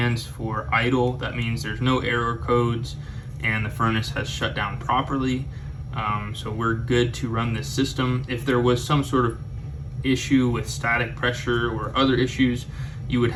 for idle. That means there's no error codes and the furnace has shut down properly. So we're good to run this system. If there was some sort of issue with static pressure or other issues, you would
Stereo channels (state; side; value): identical; both; correlation 1.00